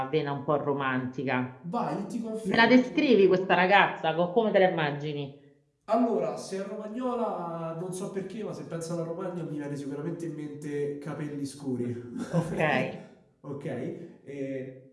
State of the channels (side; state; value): both; identical; correlation 1.00